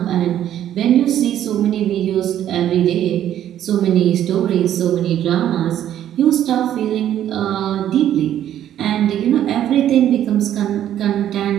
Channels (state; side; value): quieter; left; 11.2 dB